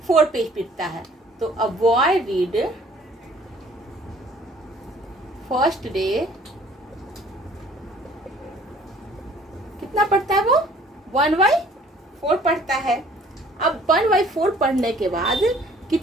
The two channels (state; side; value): normal; both; correlation 0.55